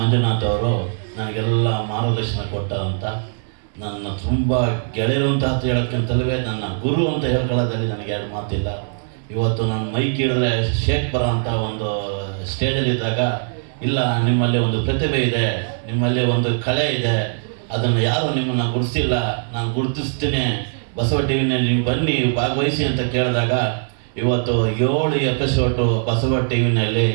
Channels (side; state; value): left; silent; 65 dB below the other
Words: ಅವರು ನನಗೆಲ್ಲ ಮಾರ್ಗದರ್ಶನ ಕೊಟ್ಟಂಥ ನನ್ನ ತುಂಬ ಗೆಳೆಯರು ಅಂತ ಹೇಳೋಕ್ಕಿಂತಲೇ ನನ್ನ ಗುರು ಅಂತ ಹೇಳ್ಕೊಳ್ಳೋದ್ರಲ್ಲಿ ನನಗೆ ಎರಡು ಮಾತಿಲ್ಲ. ಇವತ್ತು ನಾನು ಮೈಕ್ ಹಿಡಿದ್ರೆ ಶೇಕ್ ಬರೋ ಅಂಥ ಒಂದು ಸ್ಟೇಜಲ್ಲಿದ್ದಾಗ, ಇಲ್ಲ ನಿಮ್ಮಲ್ಲಿ ಒಂದು ಪ್ರತಿಭೆ ಇದೆ, ನಿಮ್ಮಲ್ಲಿ ಒಂದು ಕಲೆ ಇದೆ, ಅದನ್ನು ಯಾರು ನಿಮ್ಮನ್ನು ಗುರುತಿಸಿಲ್ಲ, ನಾನು ಗುರುತಿಸ್ತೀನಿ, ಬಸವ ಟಿ ವಿನಲ್ಲಿ ನೀವು ಬನ್ನಿ ಭಾಗವಹಿಸಿ ಅಂತ ಕೇಳಿದಾಗ ಇವತ್ತು 7 ಎಪಿಸೋಡು ಬಸವ ಟಿ ವಿನಲ್ಲಿ